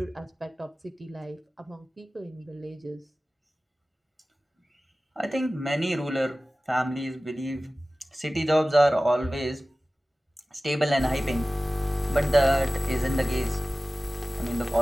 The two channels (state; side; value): normal; both; correlation 0.96